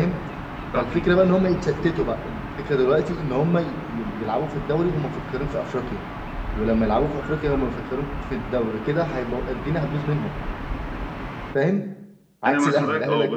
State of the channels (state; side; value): identical; both; correlation 1.00